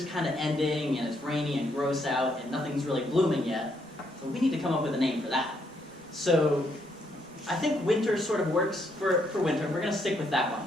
kind of ending, and it's rainy and gross out, and nothing's really blooming yet. So we need to come up with a name for that. So I think winter sort of works for winter. We're going to stick with that one.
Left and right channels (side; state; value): right; noise; rumble, 30 dB below the sound